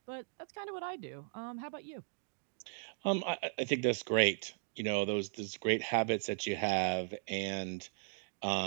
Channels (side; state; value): left; silent; digital silence